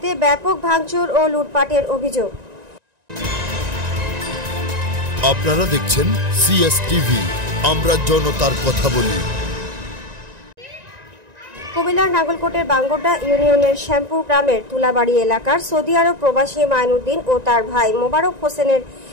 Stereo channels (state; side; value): late; left; 1.9 ms